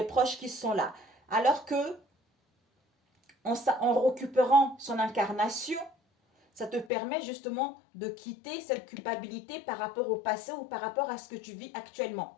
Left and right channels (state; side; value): drops out; right; at 6.9 s